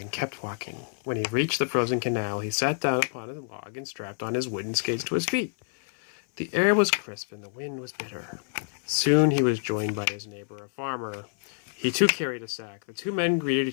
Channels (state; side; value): silent; right; 57 dB below the other